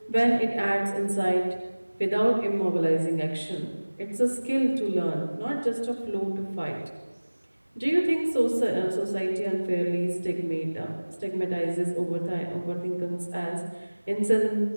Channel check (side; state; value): both; inverted; correlation -1.00